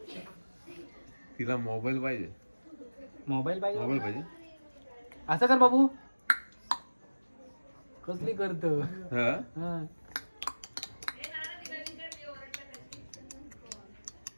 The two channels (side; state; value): both; inverted; correlation -1.00